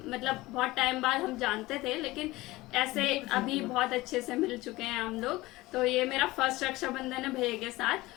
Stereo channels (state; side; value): quieter; right; 19.4 dB